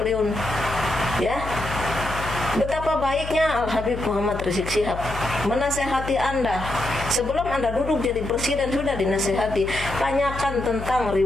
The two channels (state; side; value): noise; left; hum, 9 dB below the sound